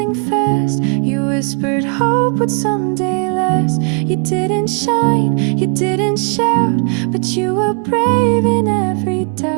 fast. You whispered hope would someday last. You didn't shine, you didn't shout, but you were brave in every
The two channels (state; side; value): quieter; left; 39.6 dB